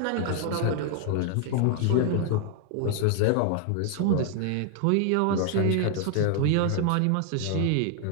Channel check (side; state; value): both; different; correlation 0.00